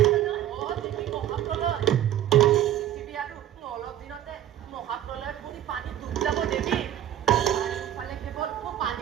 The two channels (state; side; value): quieter; left; 11.7 dB